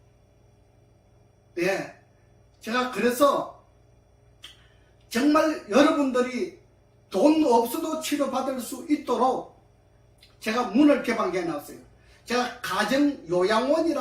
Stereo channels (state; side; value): identical; both; correlation 1.00